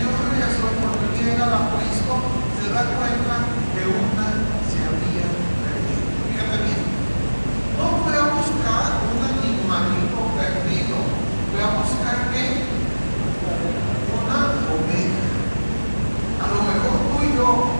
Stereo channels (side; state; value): both; inverted; correlation -1.00